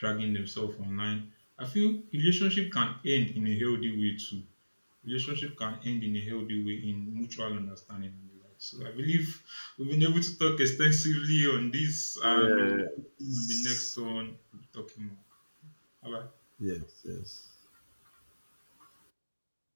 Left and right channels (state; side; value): inverted; both; correlation -1.00